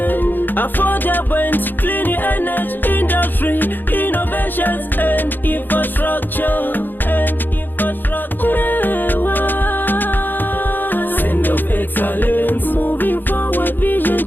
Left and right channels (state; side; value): late; right; 0.091 ms